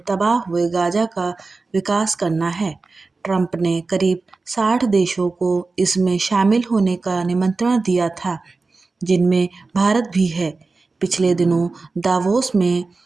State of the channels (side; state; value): left; quieter; 3.9 dB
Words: तबाह हुए गाजा का विकास करना है। ट्रंप ने करीब 60 देशों को इसमें शामिल होने का निमंत्रण दिया था, जिनमें भारत भी है। पिछले दिनों दावोस में